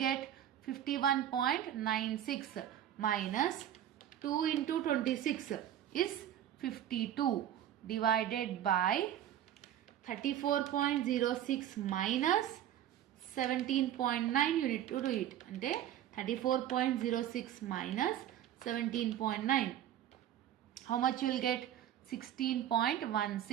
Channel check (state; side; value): quieter; left; 11.1 dB